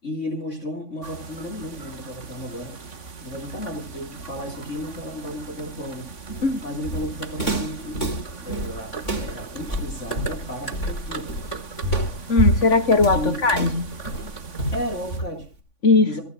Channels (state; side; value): late; right; 3.5 ms